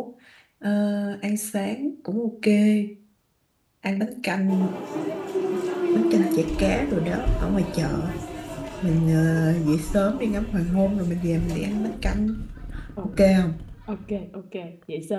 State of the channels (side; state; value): both; identical; correlation 1.00